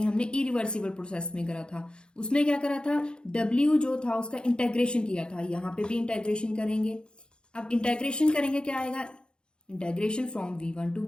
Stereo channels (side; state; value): right; late; 0.050 ms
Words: हमने इरिवर्सिबल प्रोसेस में करा था, उसमें क्या करा था, W जो था उसका इंटेग्रेशन किया था, यहाँ पे भी इंटेग्रेशन करेंगे। अब इंटेग्रेशन करेंगे क्या आएगा, integration from V1 to